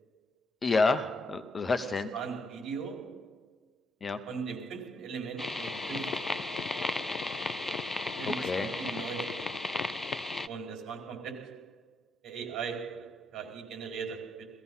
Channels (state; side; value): normal; both; correlation 0.78